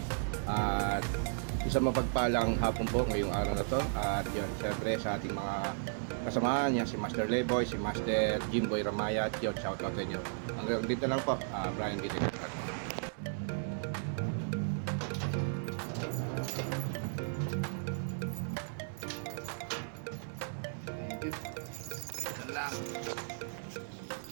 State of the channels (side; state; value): left; silent; 54 dB below the other